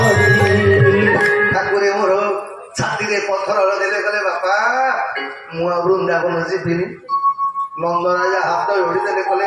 ଆସିଥିନି ନନ୍ଦରାଜା ହାତ ଯୋଡ଼ିଦେଲେ କଲେ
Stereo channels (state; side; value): identical; both; correlation 1.00